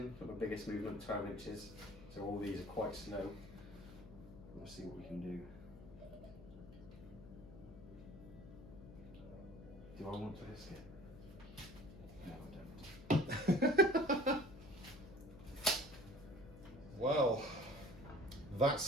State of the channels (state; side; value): noise; left; hum, 16 dB below the sound